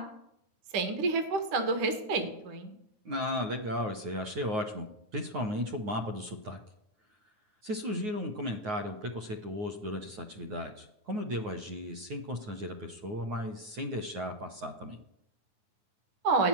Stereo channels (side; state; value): left; late; 9.5 ms